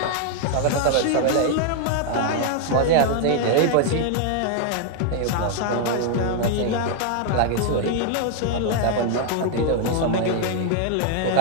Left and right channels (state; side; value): different; both; correlation 0.00